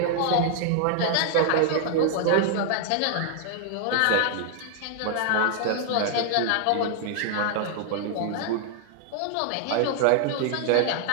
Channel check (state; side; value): different; both; correlation 0.00